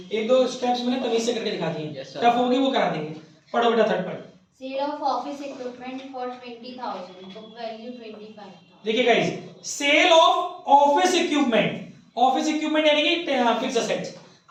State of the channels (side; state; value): both; identical; correlation 1.00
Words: 1-2 स्टेप्स मैंने तमीज से करके दिखा दिए, टफ होगी वो करा देंगे। पढ़ो बेटा third point. Sale of office equipment for 20,000, book value 25,000। देखिए guys, sale of office equipment यानी कि फिक्स असेट्स।